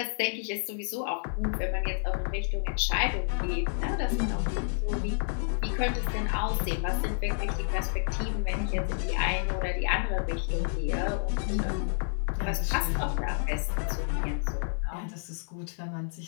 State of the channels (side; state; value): right; silent; 58 dB below the other